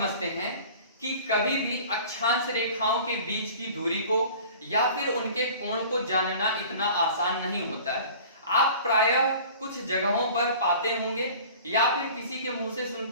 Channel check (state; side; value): inverted; both; correlation -0.44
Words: हैं कि कभी भी अक्षांश रेखाओं के बीच की दूरी को या फिर उनके कोण को जानना इतना आसान नहीं होता है। आप प्रायः कुछ जगहों पर पाते होंगे या फिर किसी के मुंह से